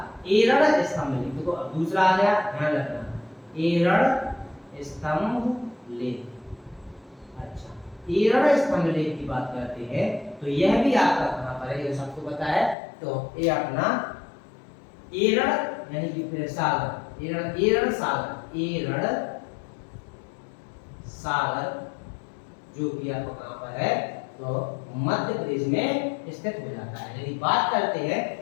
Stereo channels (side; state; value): right; drops out; at 12.8 s